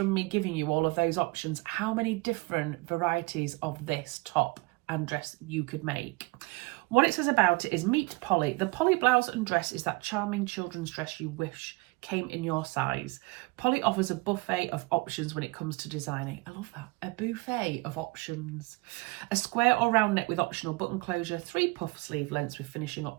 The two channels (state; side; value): quieter; left; 24.8 dB